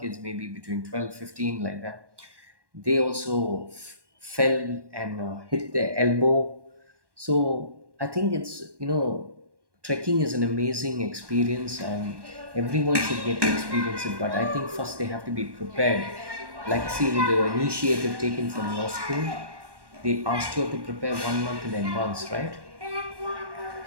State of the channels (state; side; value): late; left; 1.1 ms